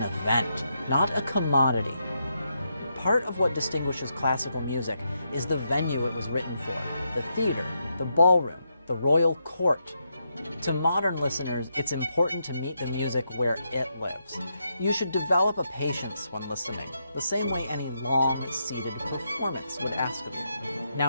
event, not a commodity. Part of what distinguishes classical music is the venue it was written for, the theater, the ballroom, the royal court. To modern listeners, it's important to meet the music where it lives. You should develop a patience when listening, the same way any long, seated performance would ask of you.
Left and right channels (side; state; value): both; inverted; correlation -0.81